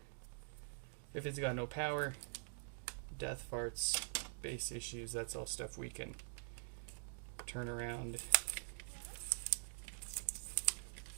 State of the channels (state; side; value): silent; left; digital silence